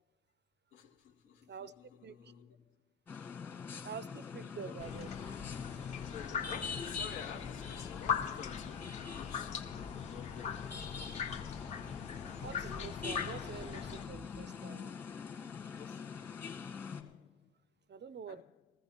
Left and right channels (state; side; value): quieter; right; 5.3 dB